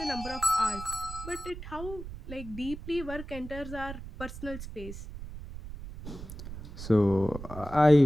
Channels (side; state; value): right; noise; rumble, 11 dB below the sound